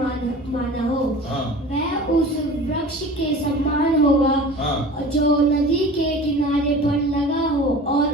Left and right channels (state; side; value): normal; both; correlation 0.39